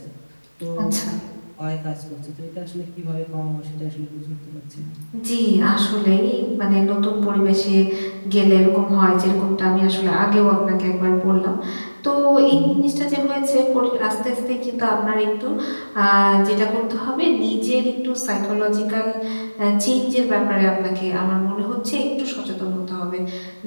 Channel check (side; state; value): both; inverted; correlation -1.00